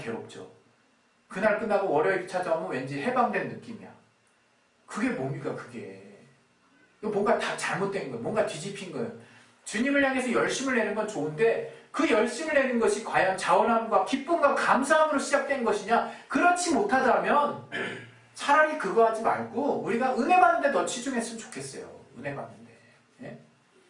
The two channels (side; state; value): both; identical; correlation 1.00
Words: 괴롭죠. 그날 끝나고 월요일이 찾아오면 왠지 해방된 느낌이야. 그게 뭡니까, 그게. 뭔가 다 잘못된 거예요. 뭔가 뒤집힌 거예요. 주님을 향해서 열심을 내는 건 좋은데 그 열심을 내는 것이 과연 자원함과 기쁨과 감사함으로 시작된 것이냐? 그렇지 못하다면 차라리 그거 하지 말고 우리가 은혜 받는데 더 치중했으면 좋겠어요. 은혜 받는데. 예?